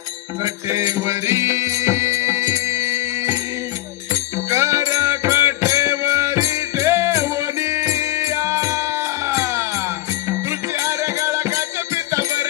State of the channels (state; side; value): quieter; right; 15.8 dB